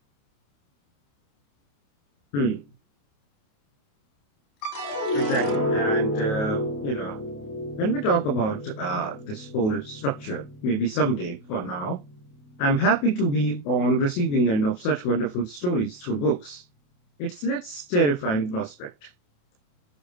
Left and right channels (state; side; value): late; right; 28 ms